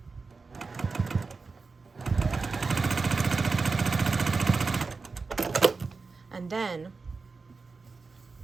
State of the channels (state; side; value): quieter; left; 4.3 dB